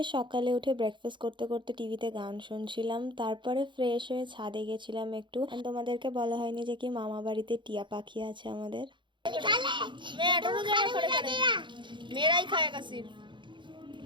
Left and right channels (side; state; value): left; late; 0.23 ms